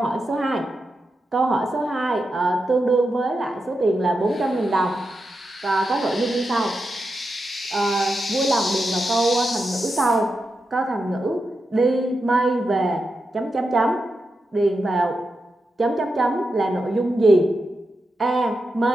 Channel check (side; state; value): both; normal; correlation 0.88